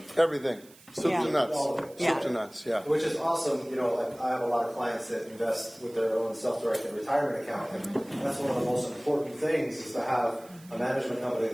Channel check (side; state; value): right; noise; hiss, 24 dB below the sound